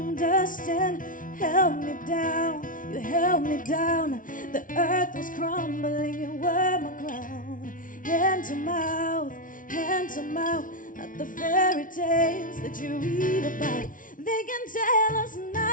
Held me down, you held me down. The earth was crumbling, you were my ground. Hand to mouth, not the fairy tales that you read about. They can tell us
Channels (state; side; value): late; right; 0.38 ms